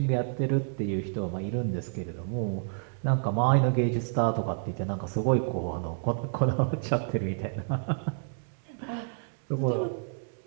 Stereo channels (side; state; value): left; silent; digital silence